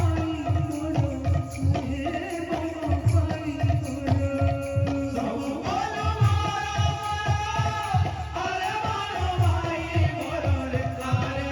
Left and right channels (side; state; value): both; identical; correlation 1.00